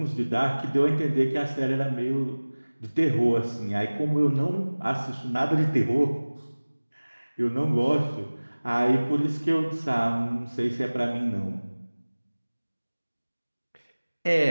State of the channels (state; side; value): inverted; both; correlation -1.00